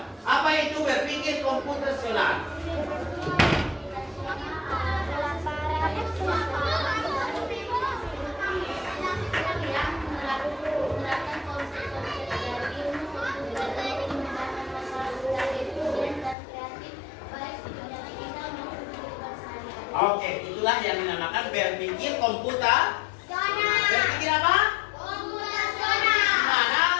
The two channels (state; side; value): drops out; right; at 16.4 s